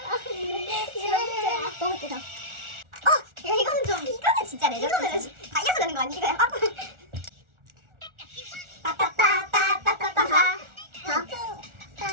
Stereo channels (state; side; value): late; left; 1.4 ms